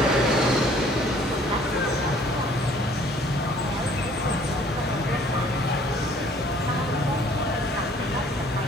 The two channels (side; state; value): both; normal; correlation 0.57